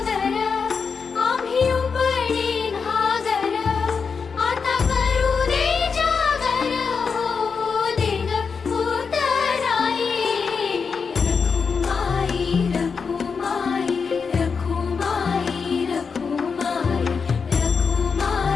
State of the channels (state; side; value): quieter; right; 5.5 dB